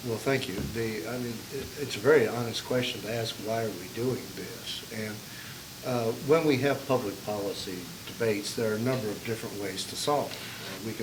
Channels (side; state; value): both; identical; correlation 1.00